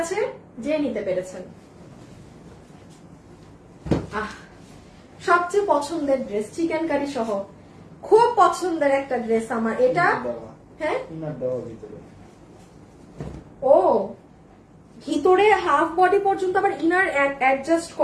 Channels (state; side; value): identical; both; correlation 1.00